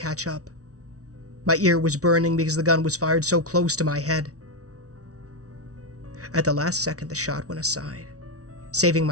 up. My ear was burning because the gun was fired so close to my head. At the last second, the shot went aside, saving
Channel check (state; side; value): late; left; 0.66 ms